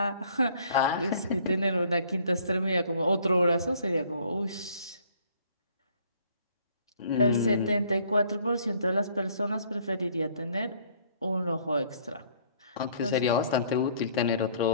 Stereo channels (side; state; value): both; inverted; correlation -0.59